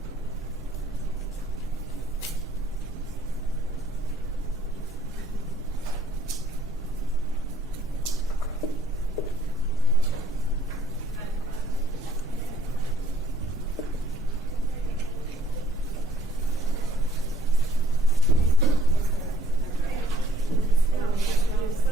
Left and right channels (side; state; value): both; normal; correlation 0.61